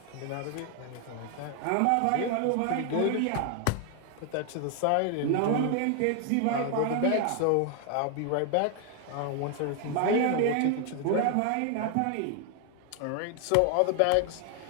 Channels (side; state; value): both; different; correlation 0.00